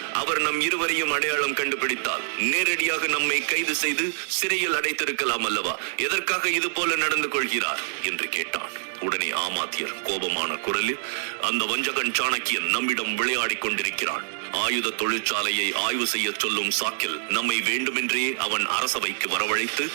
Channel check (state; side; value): silent; left; 56 dB below the other